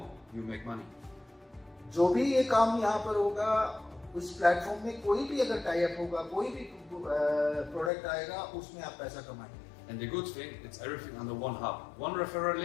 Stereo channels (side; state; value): right; drops out; at 7.9 s